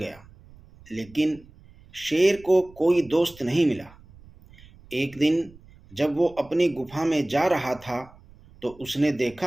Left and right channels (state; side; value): noise; right; rumble, 24 dB below the sound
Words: लेकिन शेर को कोई दोस्त नहीं मिला। एक दिन जब वो अपनी गुफा में जा रहा था तो उसने